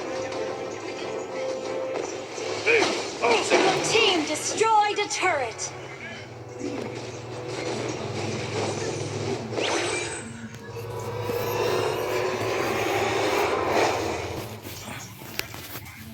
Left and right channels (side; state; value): both; identical; correlation 1.00